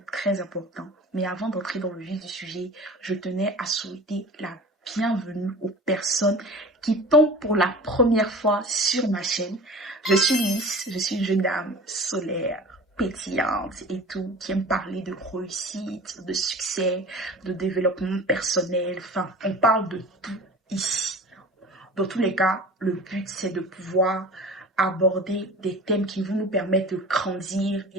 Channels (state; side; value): normal; both; correlation 0.39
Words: très important. Mais avant d'entrer dans le vif du sujet, je tenais à souhaiter la bienvenue aux personnes qui tombent pour la première fois sur ma chaîne. Je suis Lys, je suis une jeune dame solaire, pétillante et tout, qui aime parler de réussite, de succès, de développement personnel. Enfin, on parle de tout ici. Dans tous les cas, le but c'est de pouvoir aborder des thèmes qui vont nous permettre de grandir